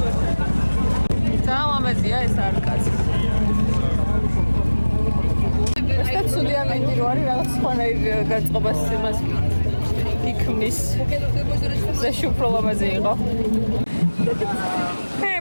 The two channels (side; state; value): both; inverted; correlation -1.00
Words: ძალიან ეს არკადი. ეს ცუდი ამინდი რო არის რაღაც სხვანაირ გაწყობას იმას იქმნის. זה שוב לא למזי იყო.